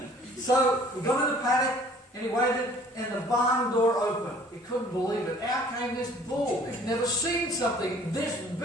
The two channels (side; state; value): both; normal; correlation 0.54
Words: So he got in the paddock, and he waited, and the barn door opened. He couldn't believe it. Out came this bull. He'd never seen something this